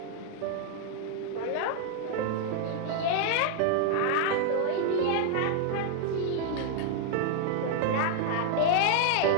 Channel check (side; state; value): both; different; correlation 0.00